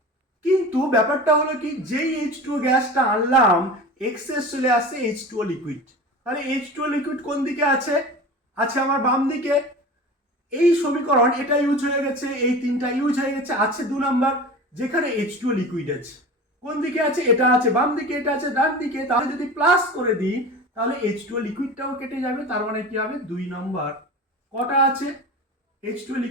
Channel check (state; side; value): normal; both; correlation 0.33